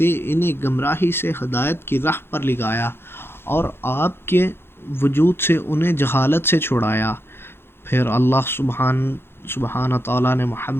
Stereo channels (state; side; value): late; right; 0.11 ms